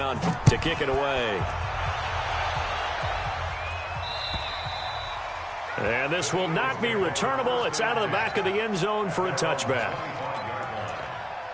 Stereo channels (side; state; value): both; identical; correlation 1.00